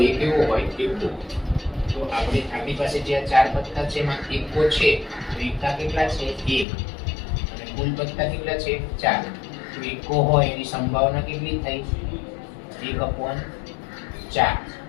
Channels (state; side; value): drops out; right; at 6.7 s